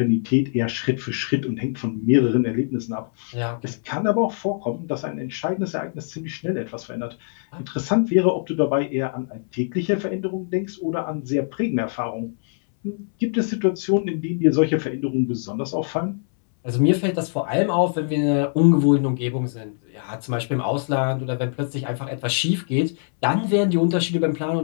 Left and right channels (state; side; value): silent; right; 61 dB below the other